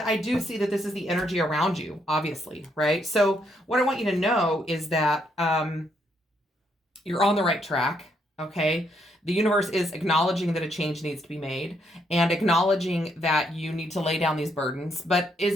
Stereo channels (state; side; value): normal; both; correlation 0.74